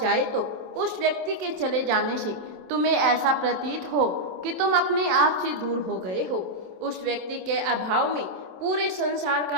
तो उस व्यक्ति के चले जाने से तुम्हें ऐसा प्रतीत हो कि तुम अपने आप से दूर हो गए हो। उस व्यक्ति के अभाव में पूरे संसार का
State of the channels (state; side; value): late; left; 27 ms